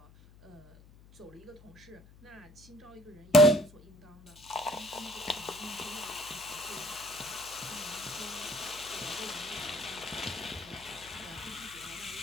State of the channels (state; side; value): noise; left; hum, 22 dB below the sound